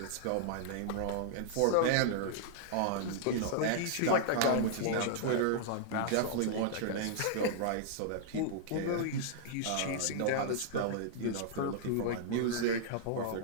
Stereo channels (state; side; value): different; both; correlation -0.01